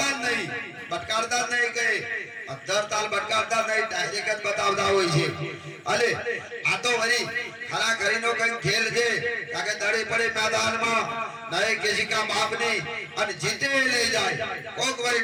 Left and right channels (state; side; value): identical; both; correlation 1.00